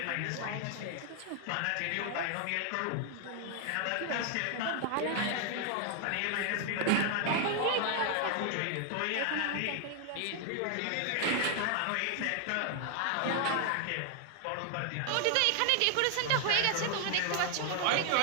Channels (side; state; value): both; different; correlation 0.00